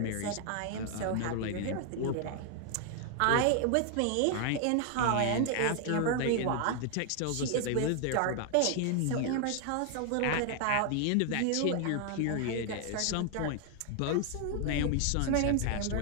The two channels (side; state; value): both; different; correlation 0.00